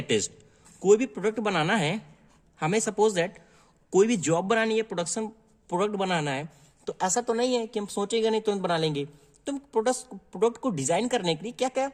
कोई भी प्रोडक्ट बनाना है, हमें सपोज दैट कोई भी जॉब बनानी है, प्रोडक्ट बनाना है, तो ऐसा तो नहीं है कि हम सोचेंगे नहीं तुरंत बना लेंगे। तो प्रोडक्ट को डिजाइन करने के लिए क्या क्या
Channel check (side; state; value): both; identical; correlation 1.00